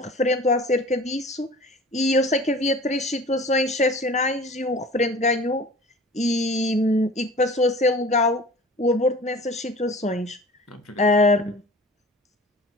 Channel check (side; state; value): both; normal; correlation 0.42